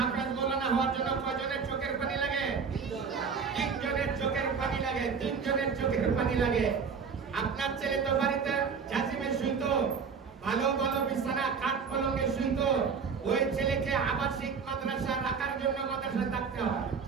মৌলানা হওয়ার জন্য কয়জনের চোখের পানি লাগে? 3 জনের চোখের পানি লাগে। 3 জনের চোখের পানি লাগে। আপনার ছেলে তো বাড়িতে জাজিমে শুইতো, ভালো ভালো বিছানা কাঠ পলঙ্গে শুইতো। ওই ছেলেকে আবাসিক মাদ্রাসা রাখার জন্য মাদ্রাসায় থাকতে হয়,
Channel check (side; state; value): left; quieter; 5.9 dB